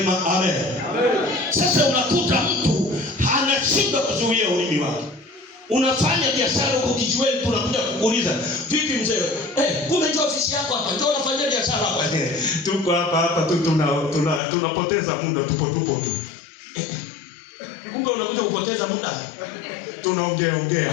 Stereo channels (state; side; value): drops out; right; at 14.4 s